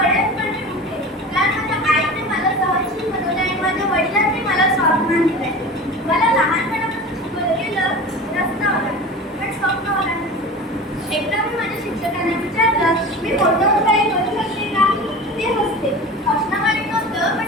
पण मी उठेन. कारण माझ्या आईने मला सहनशील बनवले आणि माझ्या वडिलांनी मला स्वाभिमान दिलाय. मला लहानपणापासून शिकवलं गेलं रस्ता ओलांड, पण स्वप्न ओलांड. एकदा मी माझ्या शिक्षकांना विचारलं, मी मोठं काही करू शकते का? ते हसले. हसणं वाईट नव्हतं,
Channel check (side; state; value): both; normal; correlation 0.34